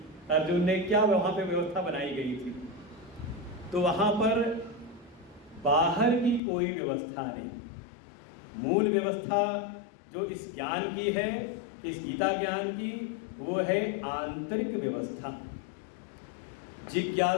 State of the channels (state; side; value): drops out; right; at 6.4 s